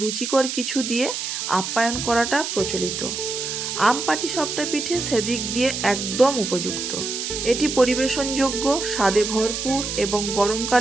রুচিকর কিছু দিয়ে আপ্যায়ন করাটা প্রচলিত। আম পাটিসাপটা পিঠে সেদিক দিয়ে একদম উপযুক্ত। এটি পরিবেশনযোগ্য, স্বাদে ভরপুর এবং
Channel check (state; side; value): noise; right; hiss, 4 dB below the sound